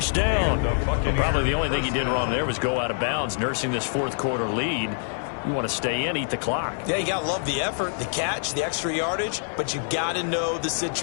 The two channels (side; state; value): right; silent; digital silence